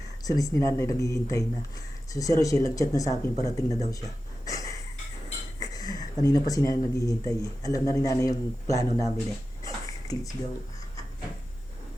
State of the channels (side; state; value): both; normal; correlation 0.93